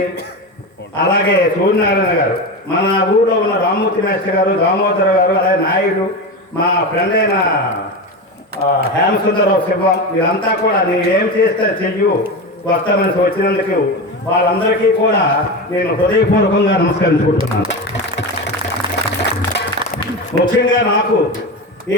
అలాగే సూర్యనారాయణ గారు, మన ఊళ్ళో ఉన్న రామ్మూర్తి మేస్టర్ గారు, దామోదర్ గారు, అలాగే నాయుడు, మా ఫ్రెండ్ అయిన హేమసుందరరావు శివం, వీళ్ళంతా కూడా నేను ఏం చేస్తే చెయ్యు వస్తామని వచ్చినందుకు వాళ్ళందరికీ కూడా నేను హృదయపూర్వకంగా నమస్కరించుకుంటున్నాను. ముఖ్యంగా నాకు ఈ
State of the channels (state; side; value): normal; both; correlation 0.21